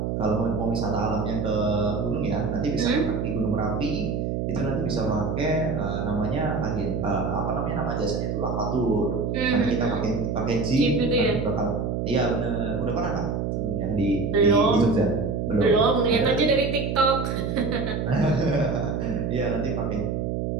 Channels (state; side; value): noise; right; hum, 1 dB below the sound